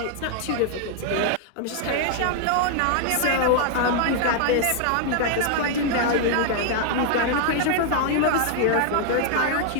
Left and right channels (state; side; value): different; both; correlation 0.00